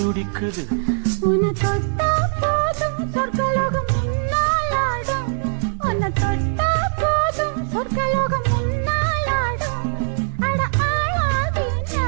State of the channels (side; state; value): left; silent; digital silence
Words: உன்னை தொட்டா போதும் சொர்க்கலோகம் முன்னாலாடும் உன்னை தொட்டா போதும் சொர்க்கலோகம் முன்னாலாடும் அட ஆளாதி